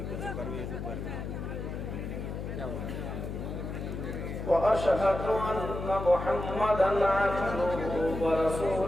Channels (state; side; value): noise; left; hum, 6 dB below the sound